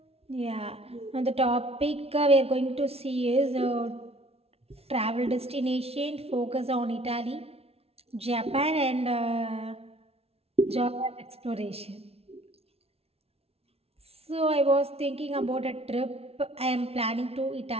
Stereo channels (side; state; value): left; late; 0.30 ms